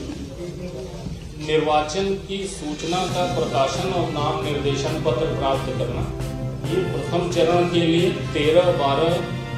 निर्वाचन की सूचना का प्रकाशन और नाम निर्देशन पत्र प्राप्त करना, ये प्रथम चरण के लिए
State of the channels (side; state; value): both; identical; correlation 1.00